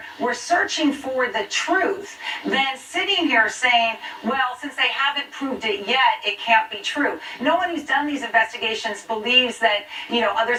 we're searching for the truth than sitting here saying, well, since they haven't proved it yet, it can't be true. No one who's done these investigations believes that,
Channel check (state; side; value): identical; both; correlation 1.00